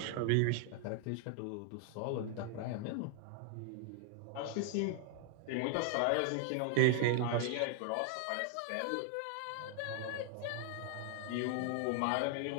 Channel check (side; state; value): both; different; correlation 0.00